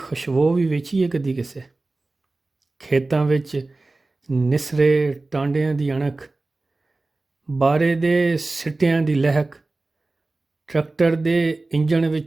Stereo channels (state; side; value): quieter; left; 3.2 dB